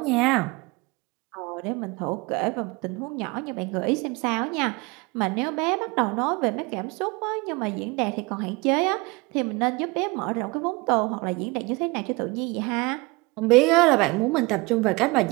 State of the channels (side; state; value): left; quieter; 25.4 dB